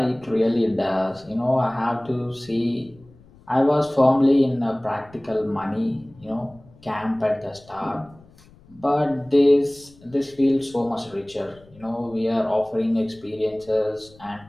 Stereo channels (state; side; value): noise; left; rumble, 26 dB below the sound